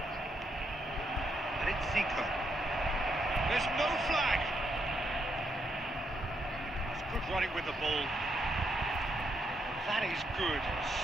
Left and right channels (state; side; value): normal; both; correlation 0.78